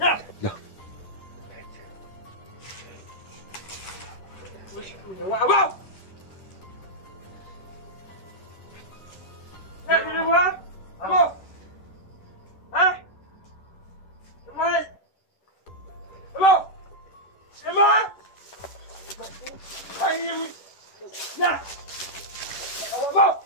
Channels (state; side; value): late; right; 10 ms